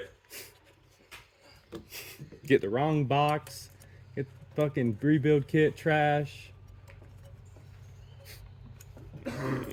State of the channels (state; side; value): identical; both; correlation 1.00